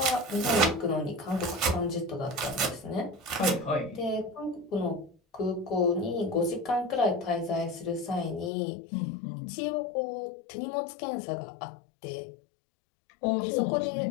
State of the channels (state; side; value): drops out; right; at 8.5 s